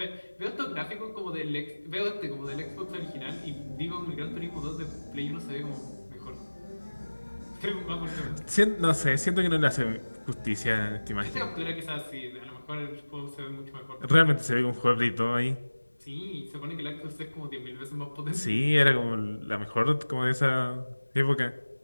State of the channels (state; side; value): inverted; both; correlation -1.00